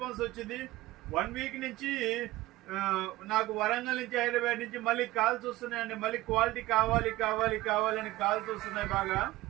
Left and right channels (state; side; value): quieter; left; 17.8 dB